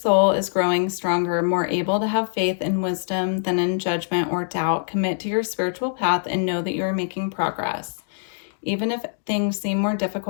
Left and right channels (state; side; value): silent; right; digital silence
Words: is growing stronger, more able to have faith and wisdom than in judgment or doubt. Commit to your spiritual path and know that you are making progress. Even if things seem more